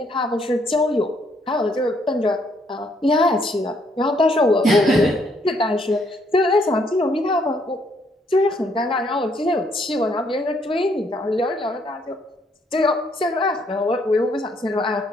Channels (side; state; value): both; normal; correlation 0.70